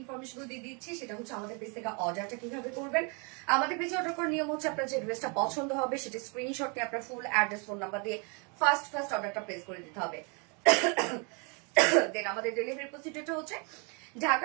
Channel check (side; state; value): left; quieter; 34.1 dB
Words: ইনফরমেশন দিয়ে দিচ্ছি। সেটা হচ্ছে আমাদের পেজ থেকে অর্ডারটা কিভাবে করবেন। আমাদের পেজে অর্ডার করার নিয়ম হচ্ছে, আপনার যে ড্রেসটা পছন্দ হবে সেটা স্ক্রিনশট নিয়ে আপনার ফুল অ্যাড্রেস ফোন নাম্বার দিয়ে ফার্স্ট অর্ডারটা প্লেস করে দিতে হবে। দেন আমাদের ডেলিভারি প্রসিডিউরটা হচ্ছে,